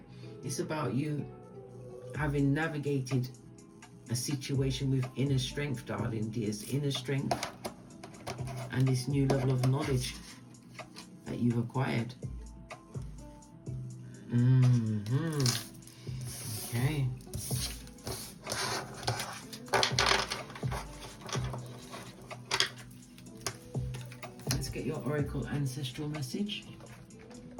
It's about you having navigated a situation with inner strength, darling dears. Inner strength and this new level of knowledge that you've acquired. Okay. Let's get your oracle ancestral message.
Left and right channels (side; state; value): both; identical; correlation 1.00